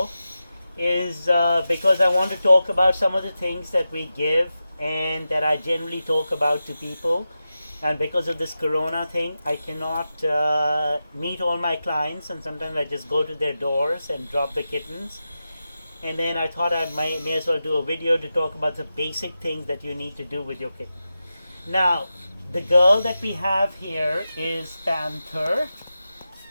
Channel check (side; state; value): both; inverted; correlation -0.91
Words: is because I want to talk about some of the things that we give and that I generally talk about to people. And because of this corona thing, I cannot meet all my clients, and sometimes I just go to their doors and drop the kittens. And then I thought I may as well do a video to talk about the basic things that you need to do with your kitten. Now, the girl that we have here is Panther.